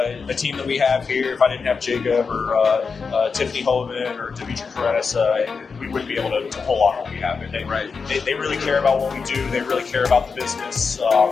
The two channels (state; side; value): quieter; right; 5.2 dB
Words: the team that we have here, if I didn't have Jacob or Tiffany Hovind or Dimitri Karenis, we wouldn't be able to pull off what we have. And they really care about what we do. They really care about the business.